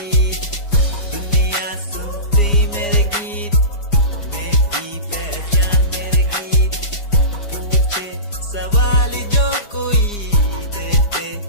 दुनिया सुनती मेरे गीत, मेरी पहचान मेरे गीत, पूछे सवाल जो कोई देते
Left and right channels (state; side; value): late; right; 4.9 ms